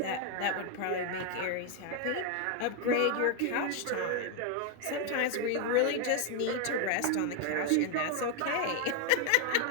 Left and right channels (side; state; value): both; different; correlation 0.01